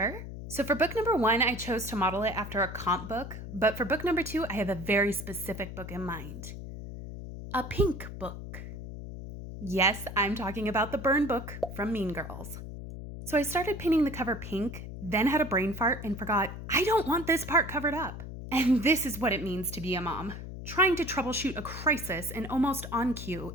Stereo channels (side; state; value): left; noise; hum, 10 dB below the sound